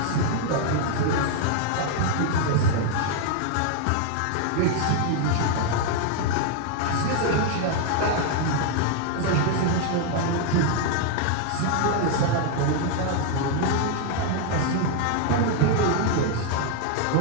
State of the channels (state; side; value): different; both; correlation 0.00